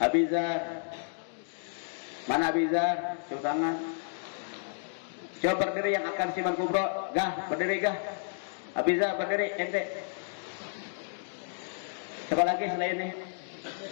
Mana Abizar? Coba tangan. Coba berdiri yang akan Simaan Kubro. Gah, berdiri gah. Abizar berdiri, ente. Siapa lagi selain ini?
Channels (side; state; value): right; silent; digital silence